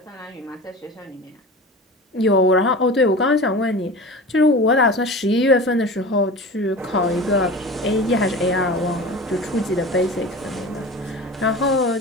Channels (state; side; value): normal; both; correlation 0.33